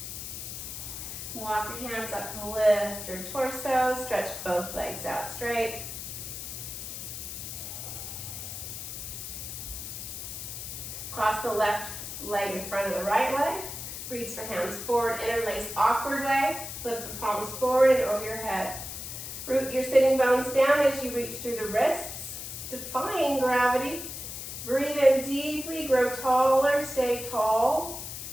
Walk your hands up to lift your torso, stretch both legs out straight. Cross the left leg in front of the right leg. Reach the hands forward, interlace awkward way. Flip the palms forward and over your head. Root your sitting bones down as you reach through the wrists, defying gravity. Breathe in deeply, grow taller, stay tall.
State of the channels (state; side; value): noise; left; hiss, 8 dB below the sound